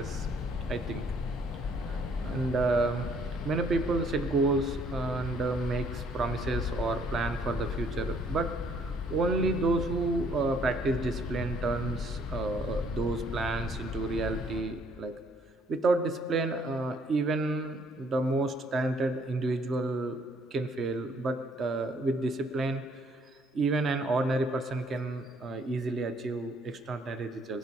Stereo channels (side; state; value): both; normal; correlation 0.64